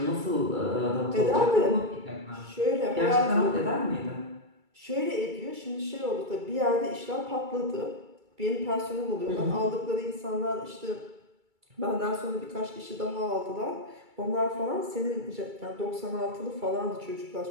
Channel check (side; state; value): left; late; 2.3 ms